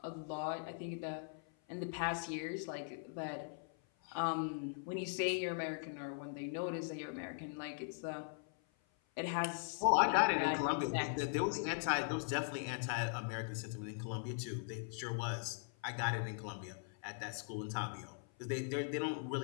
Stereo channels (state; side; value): silent; right; 51 dB below the other